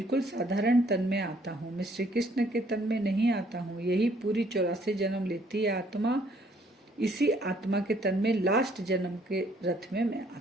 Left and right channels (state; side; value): normal; both; correlation 0.64